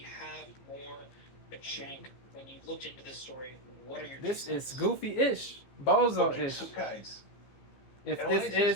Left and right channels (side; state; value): right; late; 15 ms